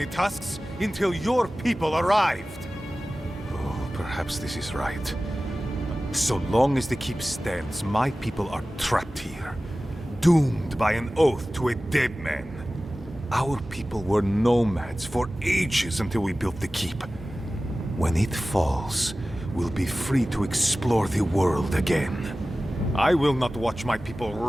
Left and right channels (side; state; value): both; normal; correlation 0.96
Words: tusks until your people arrived. Oh, perhaps this is right. So long as the keep stands, my people are trapped here, doomed by an oath to a dead man. Our people were nomads for ages until we built the keep. When it falls, we'll be free to explore the world again. I will not watch my people